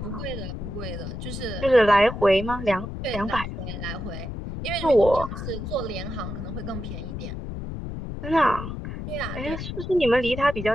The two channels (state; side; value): noise; left; rumble, 7 dB below the sound